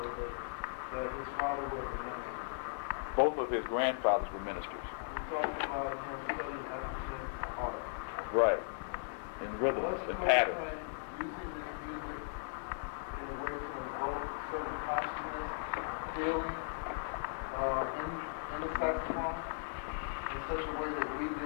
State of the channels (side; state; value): right; silent; digital silence